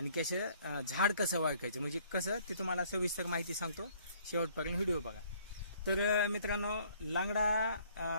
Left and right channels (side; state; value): both; inverted; correlation -0.60